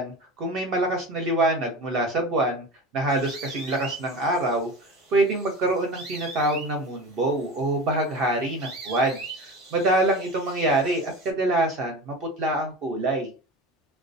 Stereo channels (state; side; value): normal; both; correlation 0.31